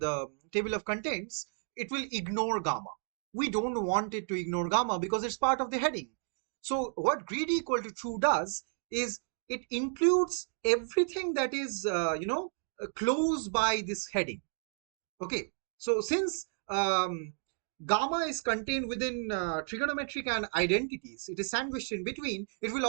table of contents, it will ignore gamma. We don't want it to ignore gamma because it's part of the heading. So what greedy equal to true does is it includes everything that is close by this heading. Okay, so since gamma is contained within trigonometric and identities, it is sandwiched in between, it will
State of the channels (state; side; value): silent; left; 56 dB below the other